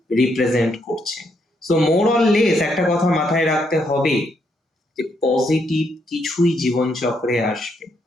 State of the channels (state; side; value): normal; both; correlation 0.76